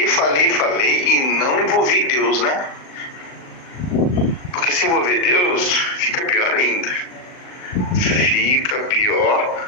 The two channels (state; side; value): late; right; 39 ms